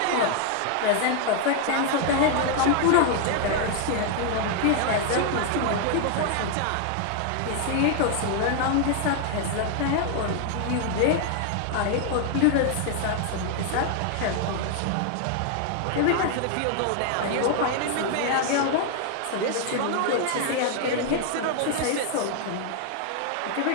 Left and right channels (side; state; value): both; different; correlation 0.00